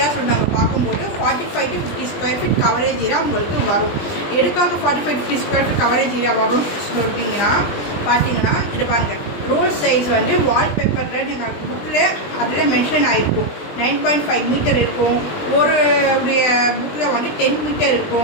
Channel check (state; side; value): late; right; 20 ms